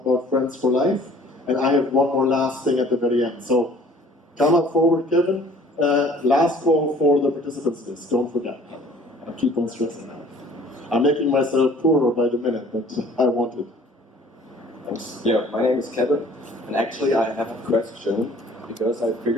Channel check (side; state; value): both; normal; correlation 0.53